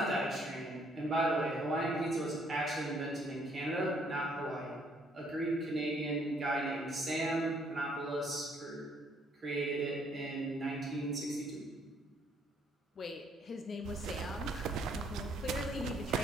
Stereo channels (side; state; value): both; normal; correlation 0.66